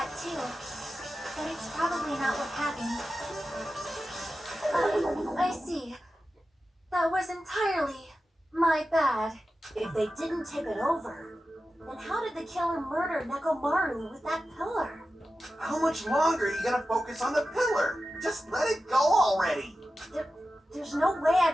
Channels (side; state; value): both; normal; correlation 0.93